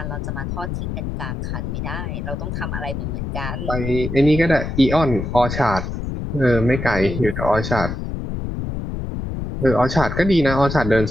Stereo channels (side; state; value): left; noise; rumble, 5 dB below the sound